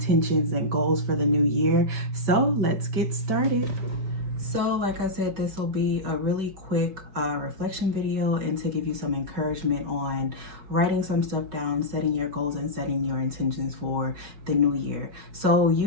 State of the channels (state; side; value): late; left; 5.2 ms